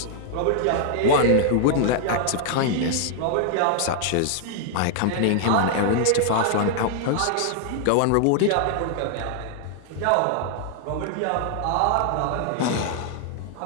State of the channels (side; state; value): both; different; correlation 0.00